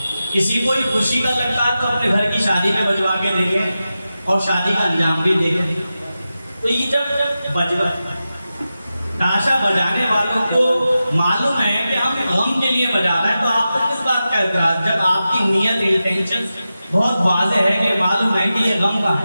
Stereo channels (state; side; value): inverted; both; correlation -0.92